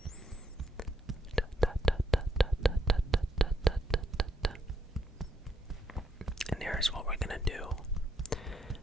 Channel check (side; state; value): both; normal; correlation 0.77